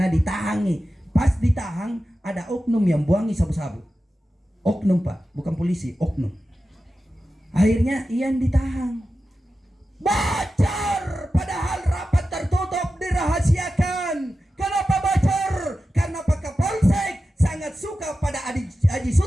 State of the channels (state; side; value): normal; both; correlation 0.93